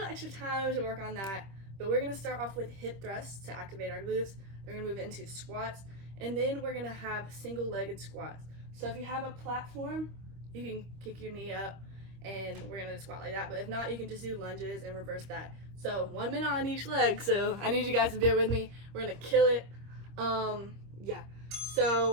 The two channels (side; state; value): left; late; 26 ms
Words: extra time to work on that. But we're gonna start off with hip thrusts to activate our glutes. We're gonna move into squats, and then we're gonna have single-legged squats. So if you have a platform, you can kick your knee up, and we're gonna squat like that. But if not, you can just do lunges and reverse that. So 1 minute on each leg. So I need you guys to bear with me. We're gonna kill it. Yeah.